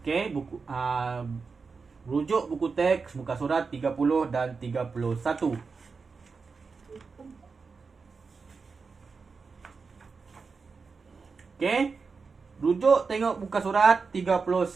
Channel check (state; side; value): quieter; left; 4.8 dB